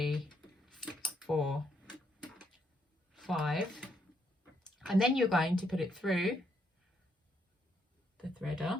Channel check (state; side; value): normal; both; correlation 0.75